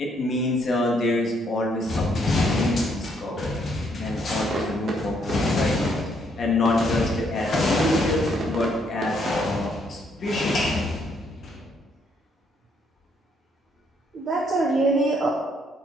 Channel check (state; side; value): normal; both; correlation 0.71